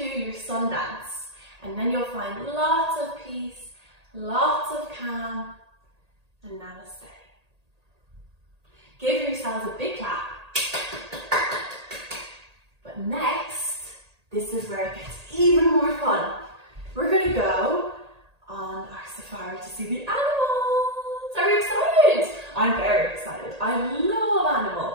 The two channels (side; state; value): left; late; 1.8 ms